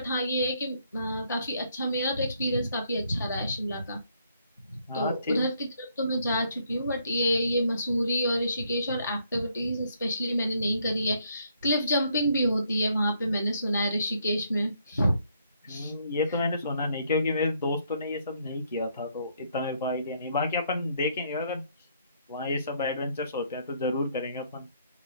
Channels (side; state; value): both; inverted; correlation -0.70